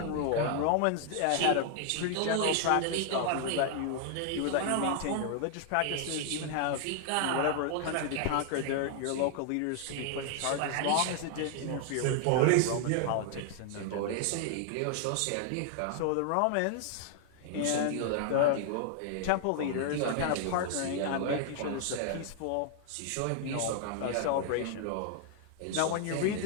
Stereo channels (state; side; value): different; both; correlation 0.00